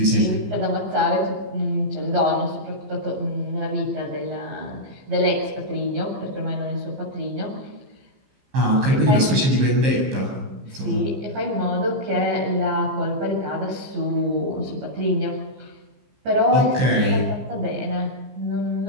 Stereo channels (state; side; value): late; left; 15 ms